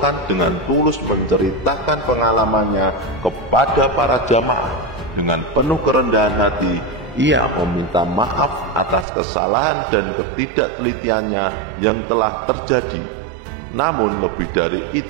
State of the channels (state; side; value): drops out; left; at 9.1 s